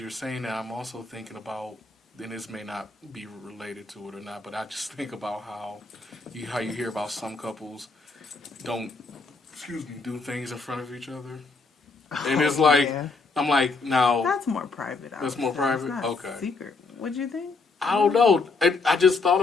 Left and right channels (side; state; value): right; quieter; 4.0 dB